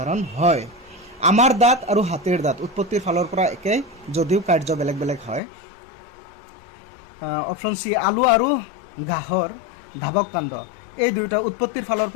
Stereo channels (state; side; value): drops out; right; at 5.4 s